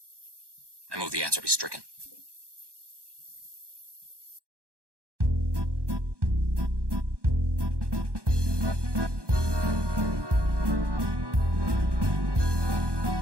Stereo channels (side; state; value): left; late; 1.1 ms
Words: I move the answer be stricken.